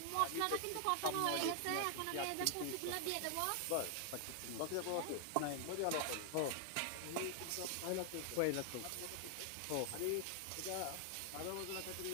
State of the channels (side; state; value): both; different; correlation 0.00